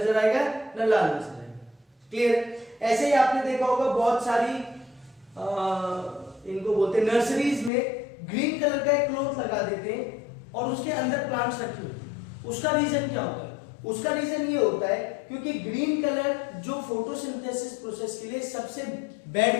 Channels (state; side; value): drops out; right; at 7.7 s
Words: आएगा ना लाल नजर आएगा। क्लियर? ऐसे ही आपने देखा होगा बहुत सारी इनको बोलते हैं नर्सरीज में ग्रीन कलर का एक क्लॉथ लगा देते हैं और उसके अंदर प्लांट्स रखे होते हैं। उसका रीजन क्या होता है? उसका रीजन ये होता है क्योंकि ग्रीन कलर जो फोटोसिंथेसिस प्रोसेस के लिए सबसे बैड